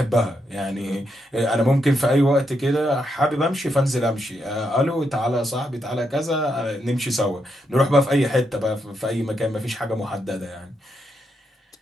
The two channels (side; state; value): both; normal; correlation 0.81